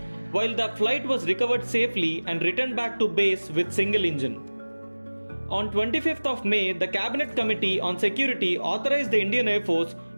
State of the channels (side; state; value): both; inverted; correlation -1.00